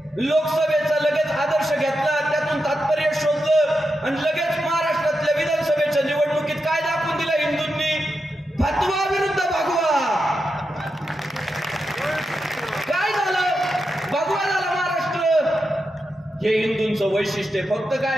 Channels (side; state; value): both; normal; correlation 0.87